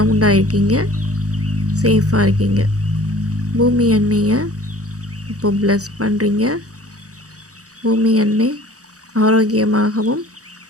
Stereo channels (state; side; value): late; left; 0.66 ms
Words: இருக்கீங்க, சேஃபாக இருக்கீங்க. பூமி அன்னையை இப்போ ப்ளஸ் பண்ணுறீங்க. பூமி அன்னை ஆரோக்கியமாகவும்